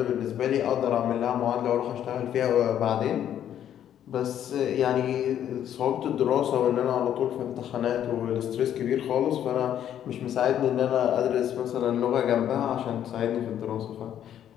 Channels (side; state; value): right; quieter; 10.4 dB